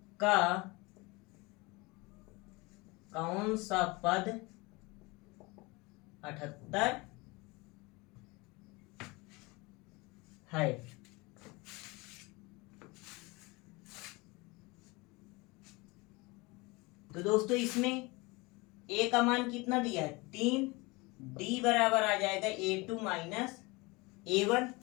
का कौन सा पद 78 है। तो दोस्तों इसमें ए का मान कितना दिया है, 3, डी बराबर आ जाएगा A2 माइनस A1।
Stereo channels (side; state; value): right; quieter; 24.9 dB